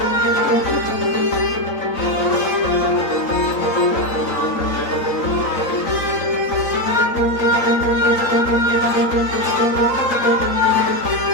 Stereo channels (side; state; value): right; late; 3.9 ms